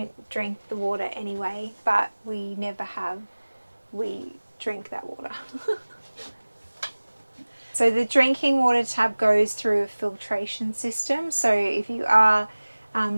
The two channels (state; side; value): inverted; both; correlation -1.00